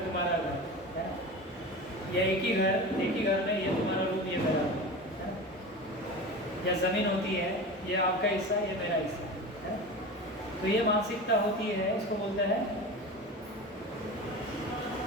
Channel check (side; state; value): both; normal; correlation 0.30